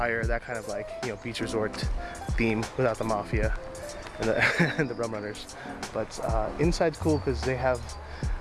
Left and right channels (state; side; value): identical; both; correlation 1.00